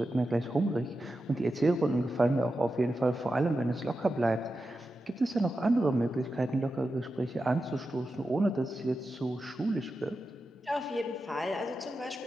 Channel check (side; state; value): both; normal; correlation 0.90